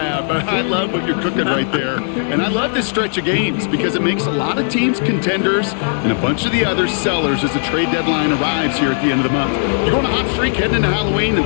but I love what you're cooking right there. And I love this stretch of games because it makes a lot of teams contenders and a bunch of the other sellers as the trade deadline arrives here at the end of the month. You're on a hot streak heading into Halloween and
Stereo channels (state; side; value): silent; right; 65 dB below the other